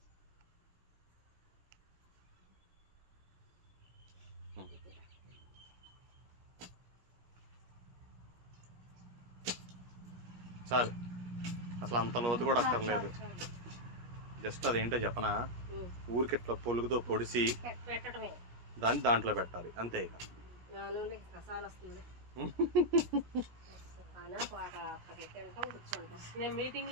చాలు, అసలు అంత లోతు కూడా అక్కర్లేదు. జస్ట్ అదేంటో చెప్పనా, ఊరికి ఇట్లా పొలుగుతో పొడిసి పెట్టడమే, దాన్ని దాంట్లో పెట్టాలి అంతే. ఇక కసాలు వస్తుంది. నేను మీటింగ్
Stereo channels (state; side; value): late; left; 17 ms